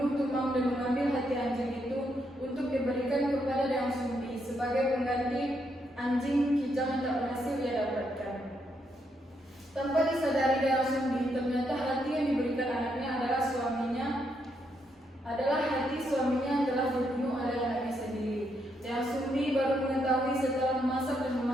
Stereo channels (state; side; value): normal; both; correlation 0.78